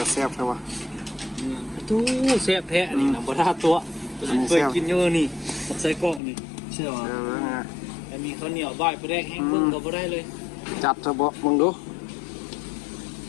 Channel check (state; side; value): drops out; right; at 6.2 s